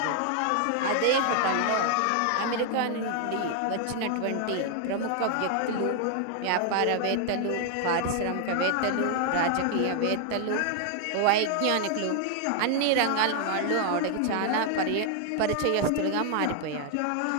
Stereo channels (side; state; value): both; different; correlation 0.00